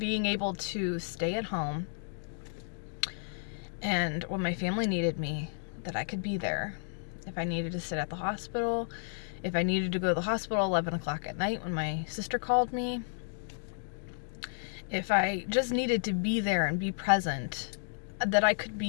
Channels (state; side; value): silent; right; digital silence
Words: able to stay at home, and when my family needed me, that I could be there. If I needed to sit at the hospital, if I needed to go to the hospital 11 o'clock at night when my sister called me, if I just needed to be there and be present, that I could